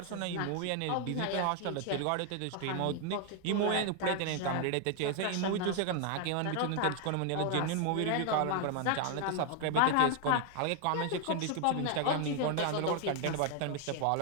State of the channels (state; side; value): different; both; correlation 0.00